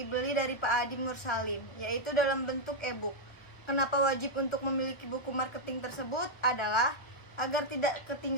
dari Pak Adi Mursalin, yaitu dalam bentuk e-book. Kenapa wajib untuk memiliki buku marketing tersebut? Adalah agar tidak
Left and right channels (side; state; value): right; late; 1.2 ms